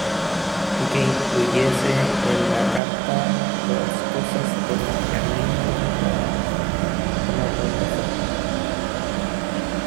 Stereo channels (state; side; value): drops out; left; at 2.8 s